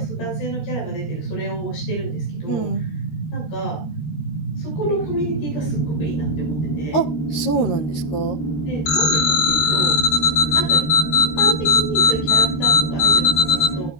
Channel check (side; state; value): right; late; 13 ms